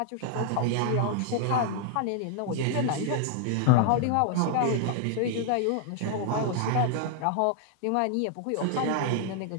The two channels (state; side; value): different; both; correlation 0.00